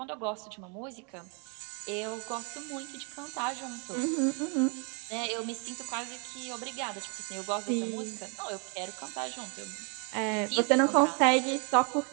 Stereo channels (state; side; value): quieter; left; 36.2 dB